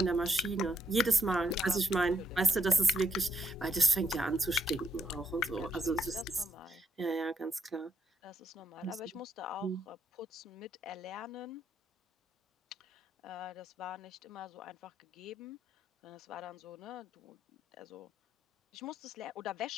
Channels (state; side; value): normal; both; correlation 0.76